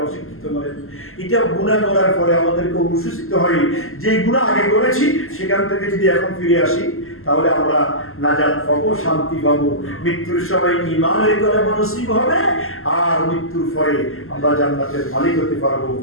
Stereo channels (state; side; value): late; right; 0.62 ms